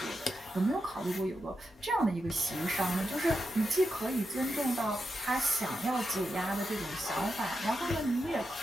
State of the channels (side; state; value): both; normal; correlation 0.87